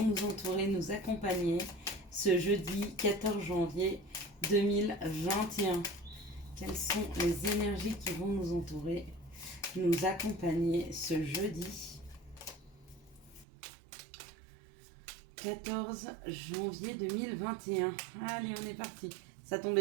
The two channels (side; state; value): left; drops out; at 13.5 s